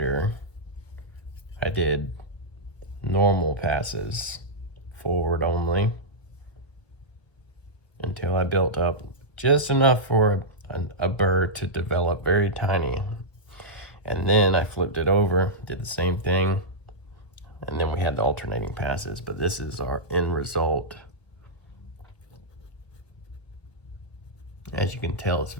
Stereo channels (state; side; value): late; right; 1.0 ms